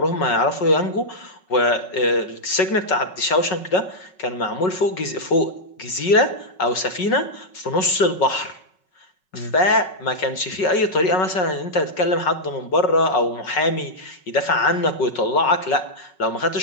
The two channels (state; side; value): late; right; 5.4 ms